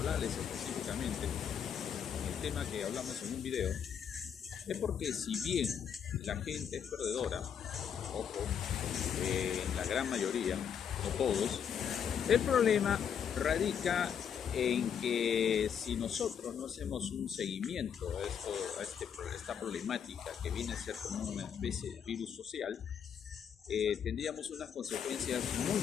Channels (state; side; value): quieter; right; 8.0 dB